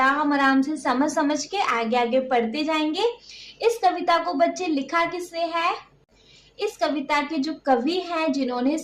आराम से समझ के आगे आगे पढ़ते जाएंगे। इस कविता को बच्चे लिखा किसने है? इस कविता के जो कवि हैं जिन्होंने इस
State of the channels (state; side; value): identical; both; correlation 1.00